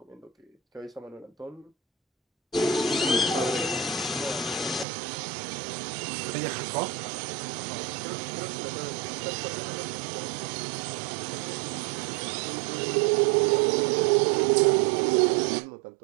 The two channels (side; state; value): left; drops out; at 4.9 s